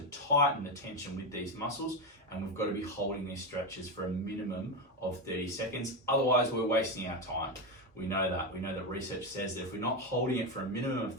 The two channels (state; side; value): normal; both; correlation 0.12